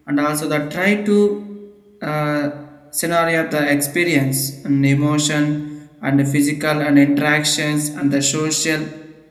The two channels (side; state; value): both; identical; correlation 1.00